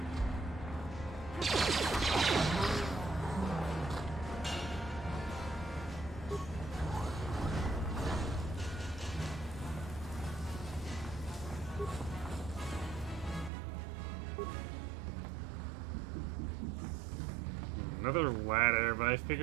Another ladder, but I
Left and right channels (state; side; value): drops out; left; at 13.5 s